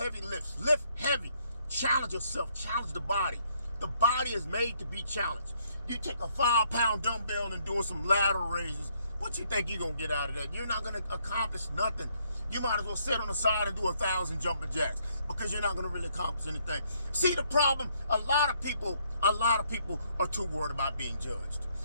lifts. Lift heavy. Challenge yourself. Challenge the body. The body is made to be challenged. You take a 5-pound dumbbell and doing some lateral raises. What you think you're going to get out of that? You're not going to accomplish nothing. You might as well sit on the side and do 1,000 jumping jacks because you're not going to really accomplish anything. See the problem? A lot of people are too worried about being judged.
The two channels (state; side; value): inverted; both; correlation -0.69